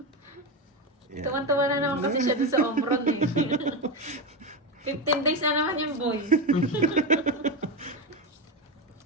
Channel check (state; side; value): normal; both; correlation 0.15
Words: Tuwan-tuwa na naman kasi siya doon sa Omron eh. 15 days na naman yung boy.